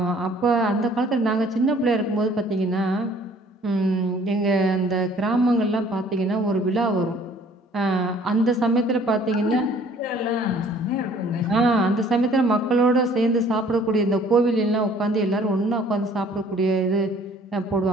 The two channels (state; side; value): normal; both; correlation 0.56